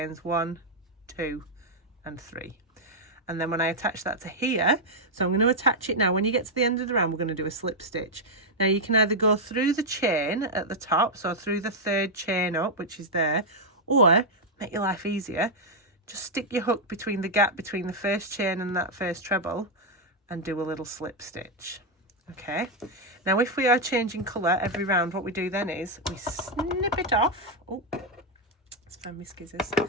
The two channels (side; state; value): both; normal; correlation -0.01